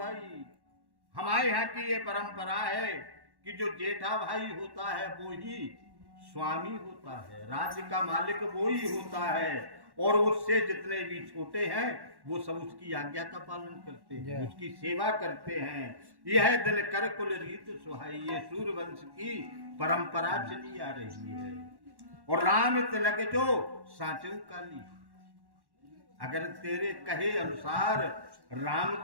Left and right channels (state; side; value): late; left; 1.1 ms